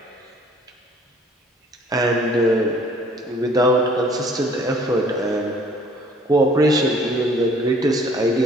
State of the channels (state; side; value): normal; both; correlation 0.56